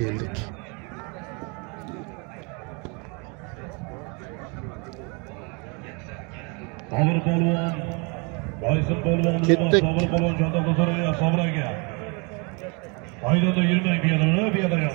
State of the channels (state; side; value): quieter; left; 32.1 dB